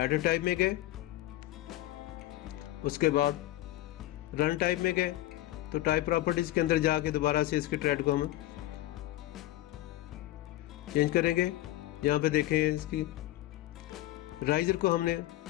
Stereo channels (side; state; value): right; quieter; 15.7 dB